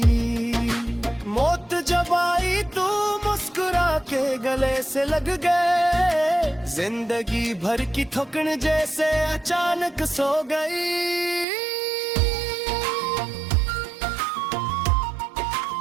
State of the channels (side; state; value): left; drops out; at 11.5 s